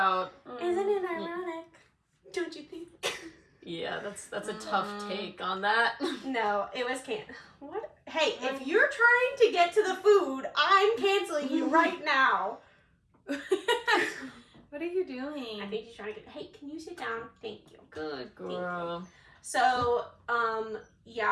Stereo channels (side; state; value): both; identical; correlation 1.00